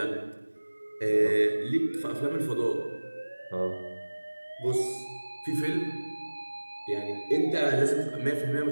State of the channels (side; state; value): both; inverted; correlation -1.00